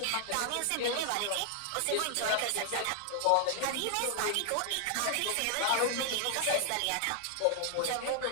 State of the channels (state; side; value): different; both; correlation 0.00